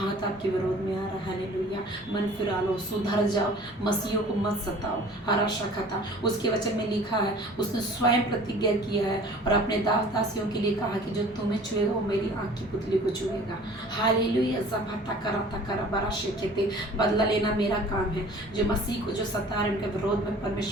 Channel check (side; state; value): both; normal; correlation 0.47